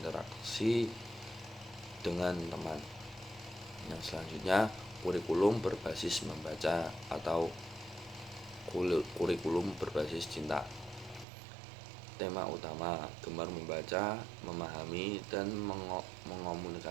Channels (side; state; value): left; drops out; at 11.2 s